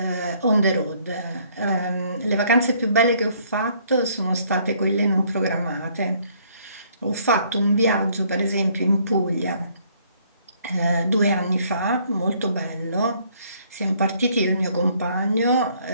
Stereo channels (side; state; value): both; inverted; correlation -0.64